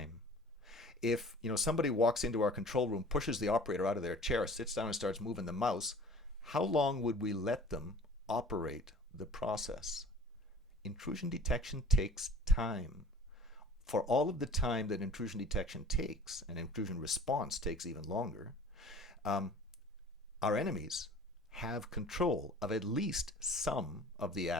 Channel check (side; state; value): both; normal; correlation 0.46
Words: If somebody walks into our control room, pushes the operator out of their chair, sits down and starts moving the mouse, how long would we let them operate the process? Intrusion detection takes time. For all of the time that intrusion detection takes, and intrusion response takes even longer, our enemies have control of at least some of the